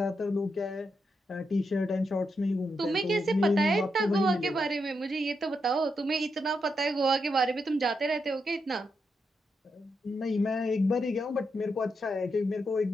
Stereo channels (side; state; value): both; normal; correlation 0.83